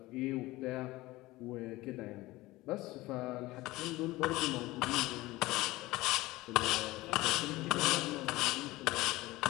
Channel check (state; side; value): quieter; right; 19.2 dB